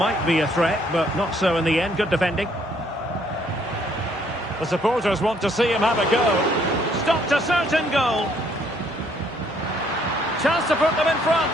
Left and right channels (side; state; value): both; normal; correlation 0.66